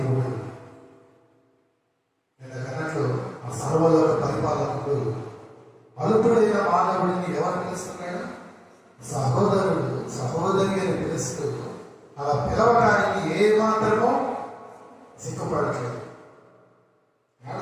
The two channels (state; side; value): identical; both; correlation 1.00